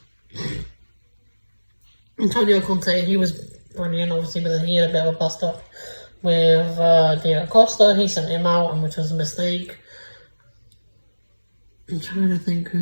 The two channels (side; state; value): both; inverted; correlation -1.00